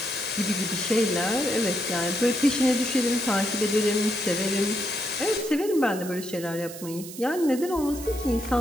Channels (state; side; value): noise; right; hiss, 13 dB below the sound